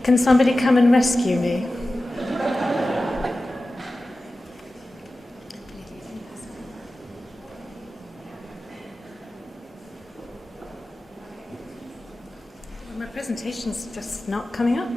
Can somebody come and rescue me? My presentation's just not coming up.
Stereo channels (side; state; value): both; normal; correlation 0.95